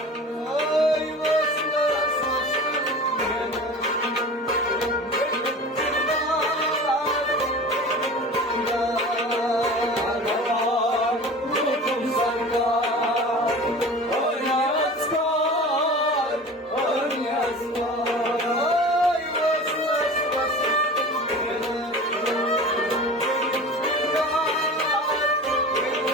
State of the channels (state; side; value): normal; both; correlation 0.37